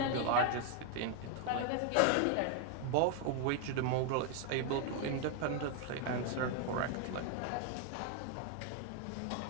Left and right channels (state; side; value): different; both; correlation 0.01